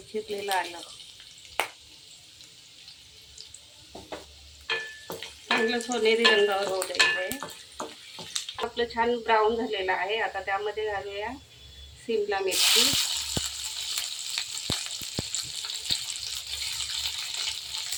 चिरलेलं आलं, चांगलं सोनेरी रंगावर होऊ द्यायचं आहे. आपलं छान ब्राऊन झालेलं आहे. आता त्यामध्ये घालूया शिमला मिरची,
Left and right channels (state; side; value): identical; both; correlation 1.00